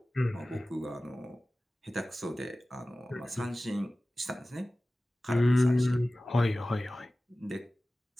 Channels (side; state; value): both; normal; correlation 0.97